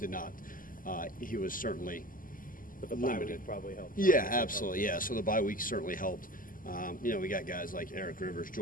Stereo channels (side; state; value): right; late; 0.40 ms